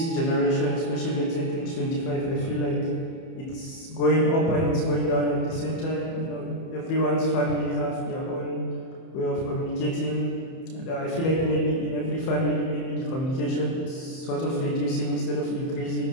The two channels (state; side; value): late; right; 31 ms